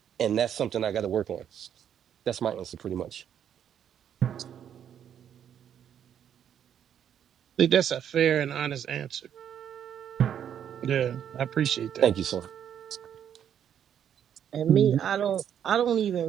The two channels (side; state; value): left; quieter; 9.2 dB